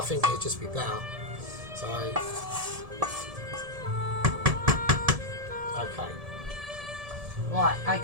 think it'd just be better. So, okay. Right,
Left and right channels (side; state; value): left; late; 1.7 ms